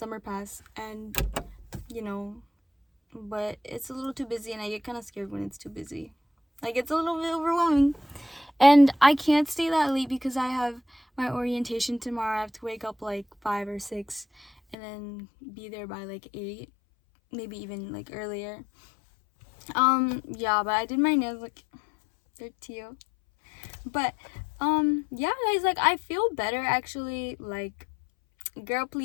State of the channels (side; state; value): right; drops out; at 14.8 s